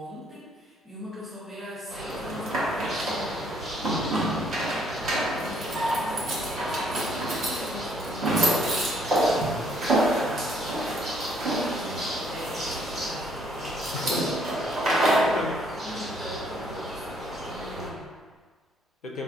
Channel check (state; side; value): normal; both; correlation 0.66